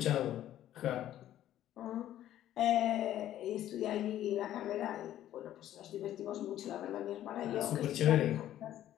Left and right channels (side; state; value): right; quieter; 12.4 dB